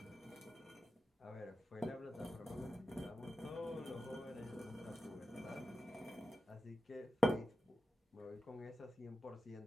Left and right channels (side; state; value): both; normal; correlation 0.91